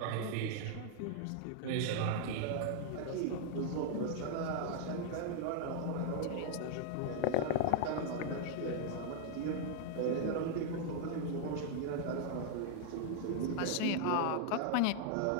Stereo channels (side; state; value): both; different; correlation 0.00